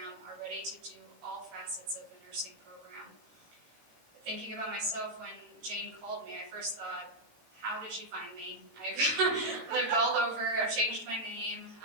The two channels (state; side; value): late; left; 18 ms